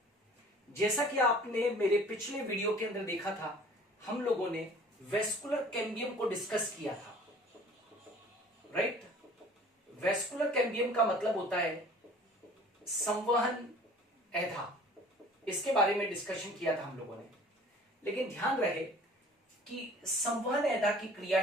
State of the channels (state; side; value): normal; both; correlation 0.49